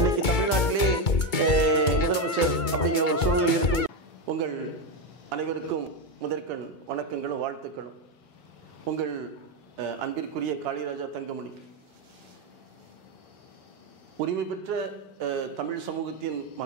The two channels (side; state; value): right; late; 2.2 ms